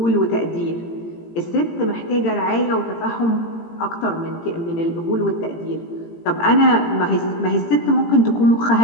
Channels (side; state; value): right; late; 18 ms